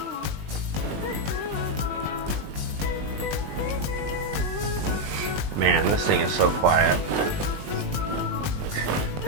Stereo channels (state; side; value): late; left; 20 ms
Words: Man, this thing is so quiet.